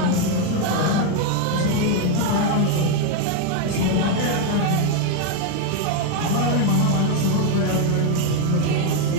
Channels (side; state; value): both; different; correlation 0.01